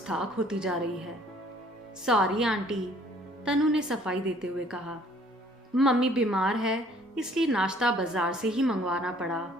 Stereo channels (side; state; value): both; normal; correlation 0.58